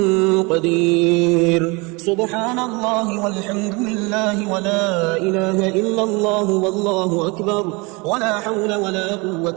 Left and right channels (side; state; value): left; quieter; 27.5 dB